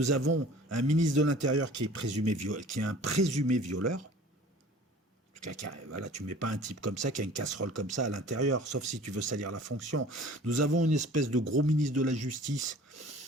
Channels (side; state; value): both; normal; correlation 0.47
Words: avons un ministre de l'Intérieur qui est un présumé violeur. Voilà, tu mets pas un type comme ça qui a une casserole comme ça à l'intérieur, sauf si tu veux salir la fonction. Nous avons une espèce de gros ministre de la Justice